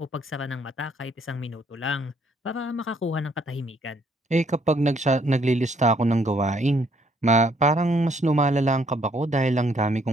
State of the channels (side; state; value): both; normal; correlation 0.67